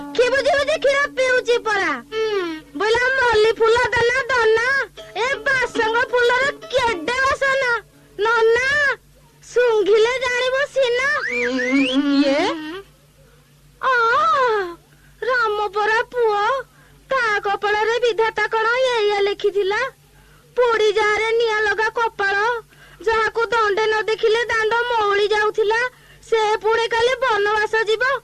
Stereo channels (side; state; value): both; identical; correlation 1.00